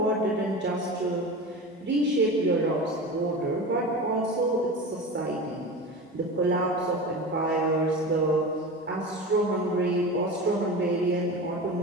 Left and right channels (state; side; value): normal; both; correlation 0.29